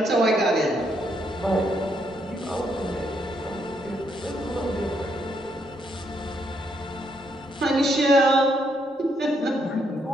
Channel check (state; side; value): normal; both; correlation 0.75